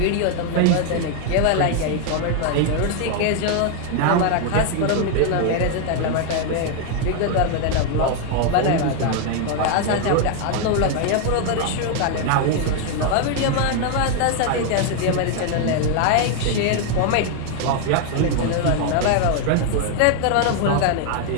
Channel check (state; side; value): different; both; correlation 0.00